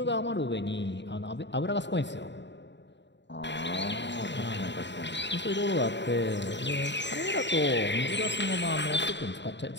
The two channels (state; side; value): late; right; 0.52 ms